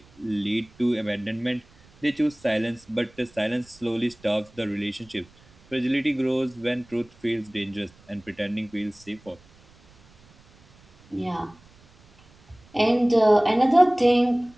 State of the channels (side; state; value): right; noise; rumble, 28 dB below the sound